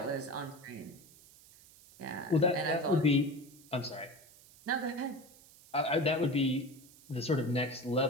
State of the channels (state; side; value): noise; right; hiss, 23 dB below the sound